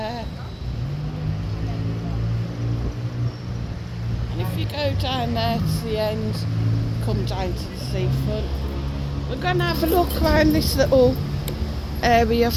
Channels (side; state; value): both; identical; correlation 1.00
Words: And if you go down there to the end, come down to the seafront. We're going to have a look around this little area